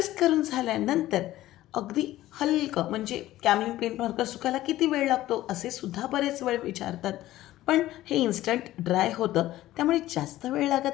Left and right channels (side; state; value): right; quieter; 15.2 dB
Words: करून झाल्यानंतर अगदी हलकं, म्हणजे कॅमलिन पेंट मार्कर सुकायला किती वेळ लागतो असे सुद्धा बरेच वेळ विचारतात, पण हे इन्स्टंट ड्राय होतं त्यामुळे जास्त वेळ